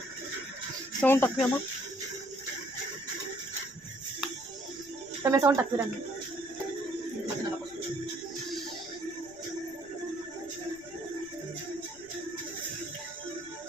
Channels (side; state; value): right; noise; rumble, 26 dB below the sound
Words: ಸೌಂಡ್ ತಪ್ಪಿಯಮ್ಮ, ತಮ್ಮ ಸೌಂಡ್ ತಪ್ಪಿರಮ್ಮ.